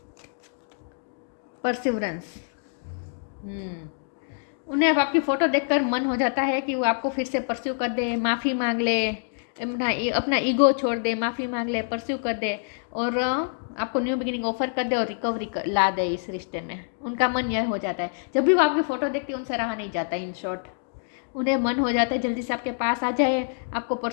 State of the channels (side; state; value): right; silent; digital silence